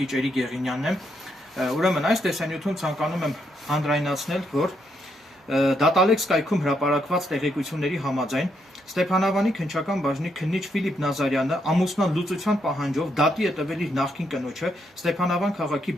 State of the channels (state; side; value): normal; both; correlation 0.78